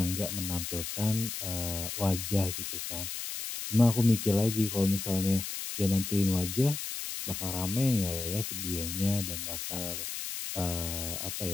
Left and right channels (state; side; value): noise; left; hiss, 5 dB below the sound